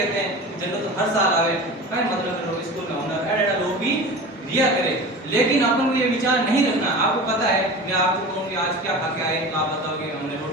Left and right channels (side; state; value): both; normal; correlation 0.33